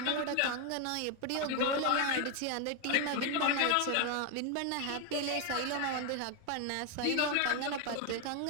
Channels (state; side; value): different; both; correlation 0.01